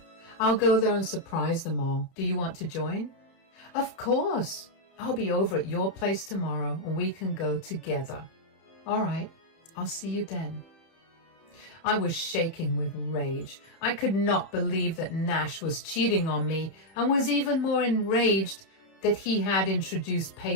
I'll go there and surprise them all. Do you want to join? Of course. I'll be over at your place tomorrow and we can go together. All right, I'll see you then. I was shaking with rage. I could not believe that Nash was cheating on me and was even more enraged that he had introduced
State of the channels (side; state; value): right; late; 31 ms